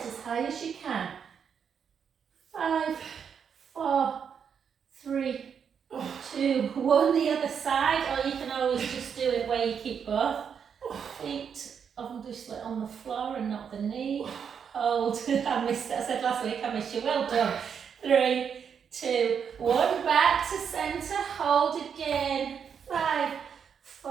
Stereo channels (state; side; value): quieter; left; 7.2 dB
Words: as high as you can. 5, 4, 3, 2, 1. The other side, or you can always just do it where you keep both feet obviously on the floor and not the knee. Hold. I missed it. I said last week I missed you. Well done. 3, 2, 1. Back to centre. Hold again. 5,